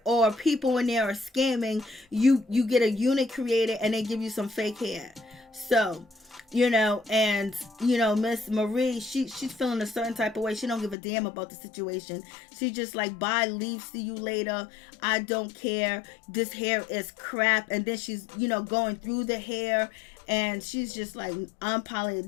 or people in there are scamming. You get a unit created and they give you some fake hair. So Miss Marie, she's feeling a certain type of way. She don't give a damn about the situation. She just like, bye, leave, see you later. I don't care. This hair is crap. And then she's, going through the hair, and she's just like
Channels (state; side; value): drops out; right; at 11.0 s